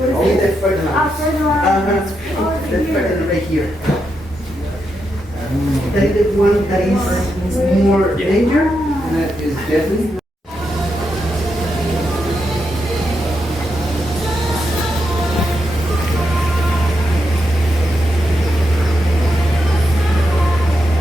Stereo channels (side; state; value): both; normal; correlation 0.84